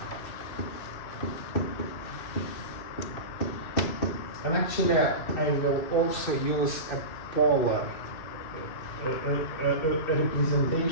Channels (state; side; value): late; right; 2.6 ms